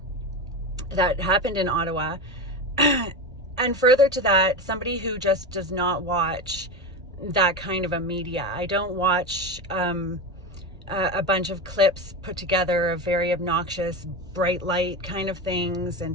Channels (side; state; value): both; normal; correlation 0.21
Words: happened in Ottawa, and further to that, somebody who just does not watch that kind of a media. I don't watch a bunch of clips put together of very obnoxious, bright light kind of things